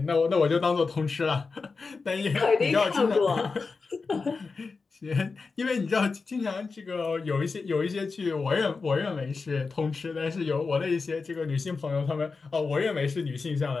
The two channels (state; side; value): quieter; right; 4.4 dB